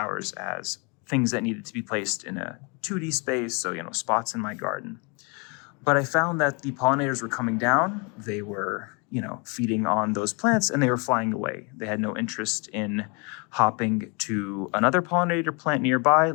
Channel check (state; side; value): quieter; right; 32.5 dB